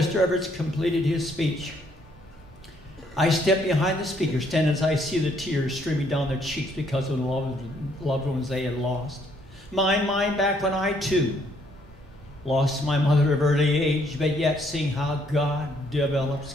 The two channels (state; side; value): normal; both; correlation 0.68